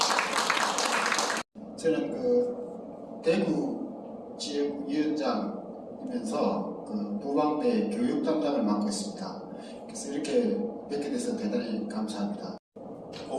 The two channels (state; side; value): identical; both; correlation 1.00